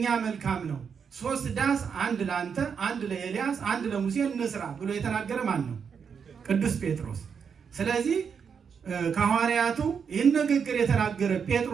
መልካም ነው፣ 3 ዳስ፣ 1 ለአንተ፣ 1 ለኤልያስ፣ 1 ለሙሴ እንስራ ብሎ የተናገረ ማን ነው? ቅዱስ ጴጥሮስ። ስለዚህ ከሐዋርያቱ ይህን ንግግር የተናገረ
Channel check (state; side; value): quieter; left; 6.6 dB